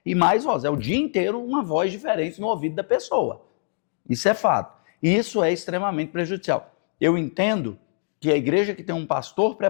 e mais vozes. É o dia inteiro uma voz diferente no ouvido da pessoa. Isso é fato. E isso é extremamente prejudicial. Eu entendo que a igreja que tem um pastor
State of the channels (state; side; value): silent; right; digital silence